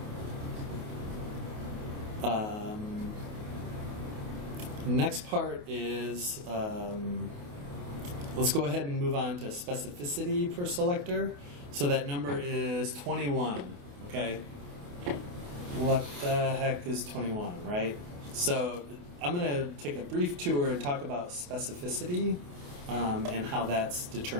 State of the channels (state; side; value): late; left; 28 ms